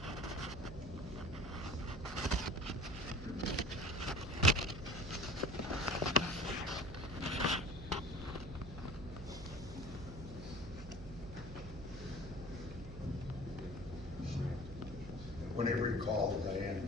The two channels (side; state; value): right; noise; hum, 11 dB below the sound